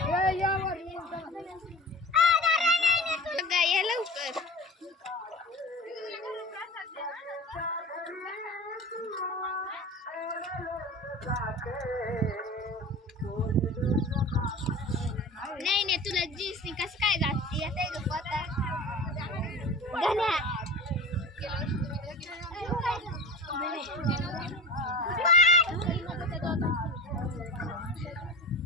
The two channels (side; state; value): both; normal; correlation 0.35